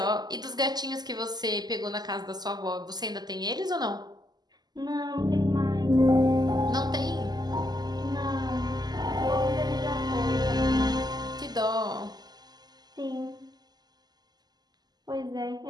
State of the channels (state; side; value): late; left; 0.20 ms